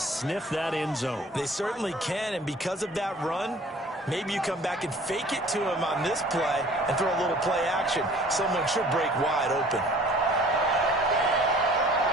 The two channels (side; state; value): both; normal; correlation 0.51